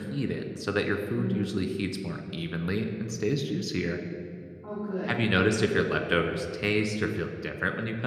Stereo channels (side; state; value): both; identical; correlation 1.00